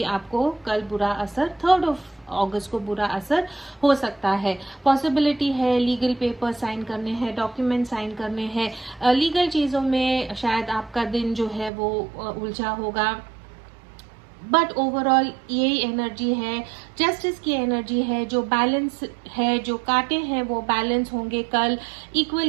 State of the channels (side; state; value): left; drops out; at 11.7 s